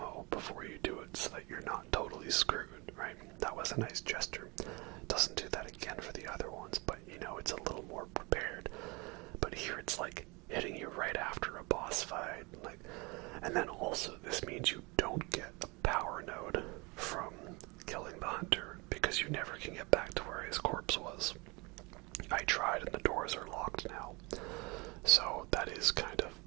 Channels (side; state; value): left; quieter; 27.0 dB